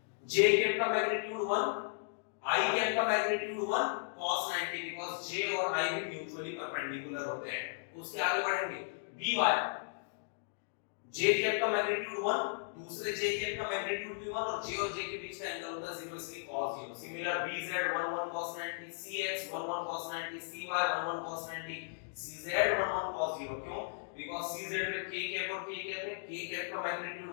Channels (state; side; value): silent; right; digital silence